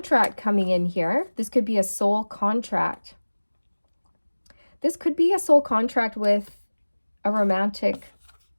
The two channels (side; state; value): both; inverted; correlation -1.00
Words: coming in here. This could be a soul contract. This could be a soul contract with a romantic